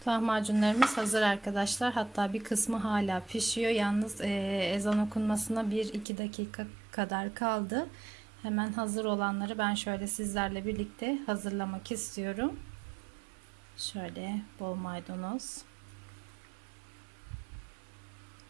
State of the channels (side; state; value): left; drops out; at 6.1 s